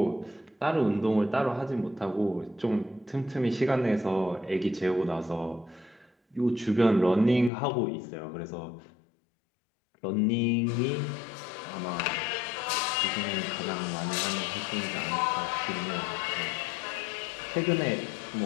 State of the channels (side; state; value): right; drops out; at 7.5 s